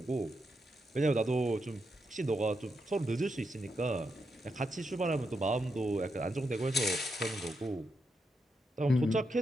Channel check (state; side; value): normal; both; correlation 0.83